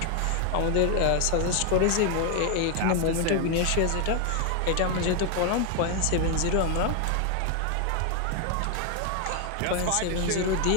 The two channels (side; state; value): both; different; correlation 0.01